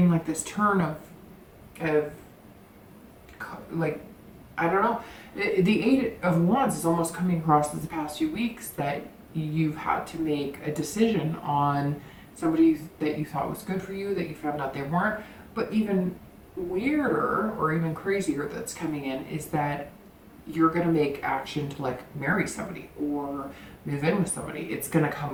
like this turn of like, I don't know. The Eight of Wands is almost coming across as the past few weeks that you've had to make a decision on somebody that you thought was good for you, that you found out they weren't. But even weirder or even crazier that's coming in is that you're going to make action to like marry somebody or move in with somebody. It's going to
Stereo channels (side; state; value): both; identical; correlation 1.00